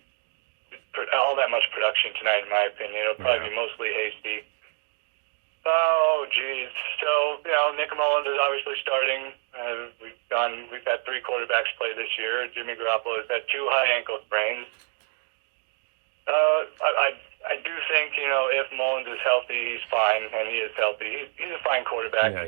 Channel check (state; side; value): silent; left; digital silence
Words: production tonight, in my opinion. It'll probably be mostly Hasty. Oh, geez. So, Nick Mullins is obviously starting. We've had three quarterbacks play this year. Jimmy Garoppolo has had 2 high ankle sprains. I do think, if Mullins is healthy, he's fine, and he is healthy. He's a fine quarterback.